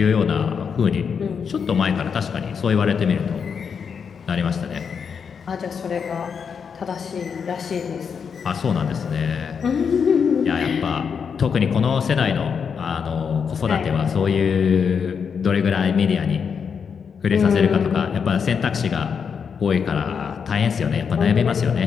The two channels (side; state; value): right; quieter; 6.5 dB